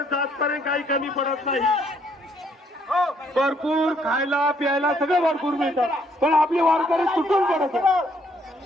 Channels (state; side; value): normal; both; correlation 0.68